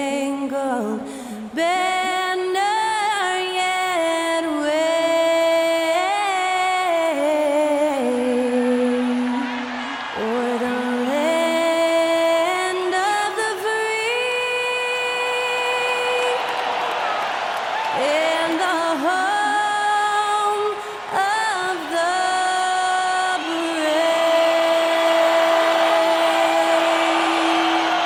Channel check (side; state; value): both; identical; correlation 1.00